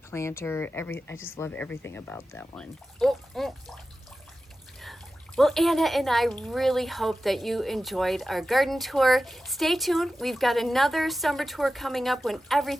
planter. I just love everything about that one. Well, Anna and I really hope that you enjoyed our garden tour. Stay tuned. We've got another summer tour coming up when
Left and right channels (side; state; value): both; normal; correlation 0.94